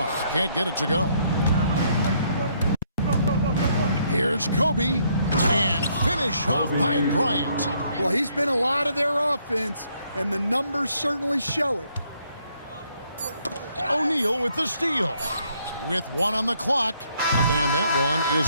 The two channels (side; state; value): both; inverted; correlation -0.70